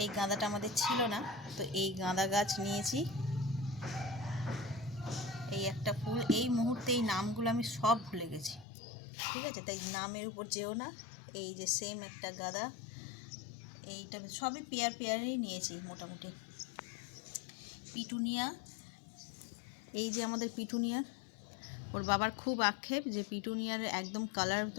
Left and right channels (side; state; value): right; drops out; at 8.7 s